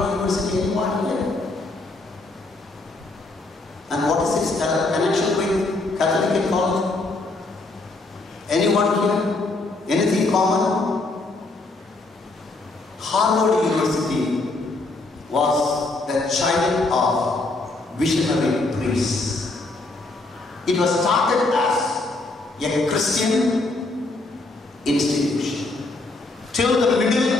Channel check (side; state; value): right; quieter; 3.2 dB